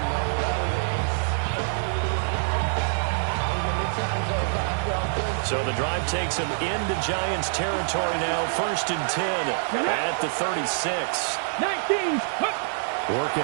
So the drive takes them into Giants territory now. 1st and 10 at the 36. 19.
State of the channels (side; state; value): left; silent; digital silence